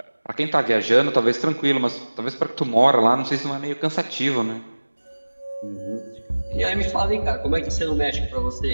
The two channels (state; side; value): inverted; both; correlation -1.00